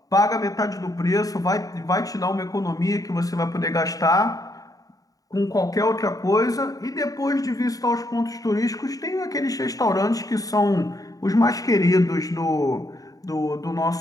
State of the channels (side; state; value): right; late; 0.17 ms